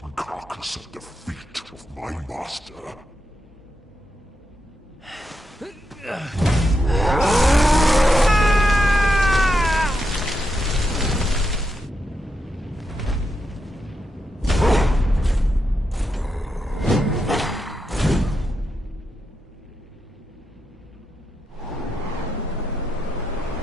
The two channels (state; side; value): normal; both; correlation 0.84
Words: carcass at the feet of my master.